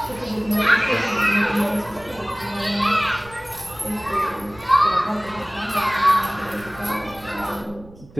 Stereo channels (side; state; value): right; noise; rumble, 21 dB below the sound